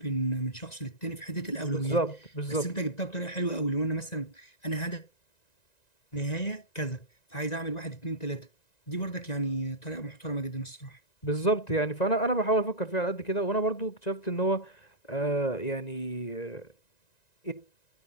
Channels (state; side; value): late; right; 1.9 ms